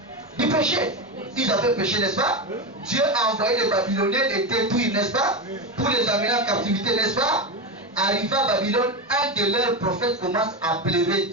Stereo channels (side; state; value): both; normal; correlation 0.16